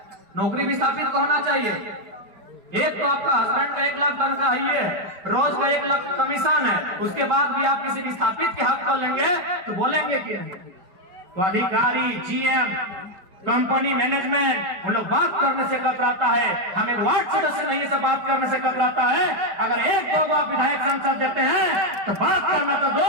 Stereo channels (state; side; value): late; left; 5.2 ms